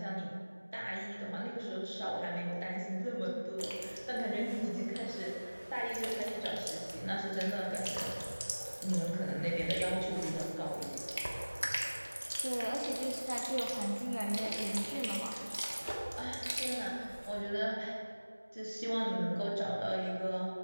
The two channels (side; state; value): both; inverted; correlation -1.00